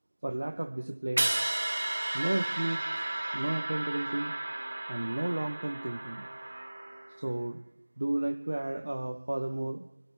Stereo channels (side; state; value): both; inverted; correlation -1.00